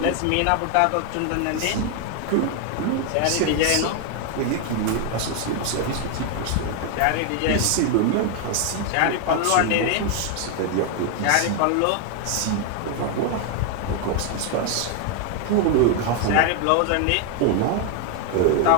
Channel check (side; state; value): both; different; correlation 0.01